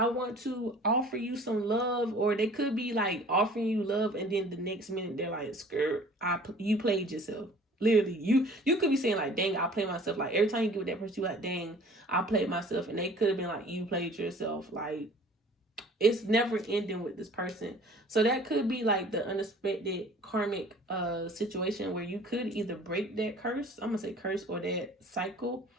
want to offer you some love. Or they could be like offering you love, and then the next minute they're like, skirt, you played yourself. Literally, you could be saying like, dang, I played myself. Like, every time you get with that person, you like, dang, I played myself. And they could have been like, you played yourself. Like, it's never ending with this person. So that could be like the unexpected karmic situation where you could either break that curse, I'm gonna say curse, or that cycle,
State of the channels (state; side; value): normal; both; correlation 0.49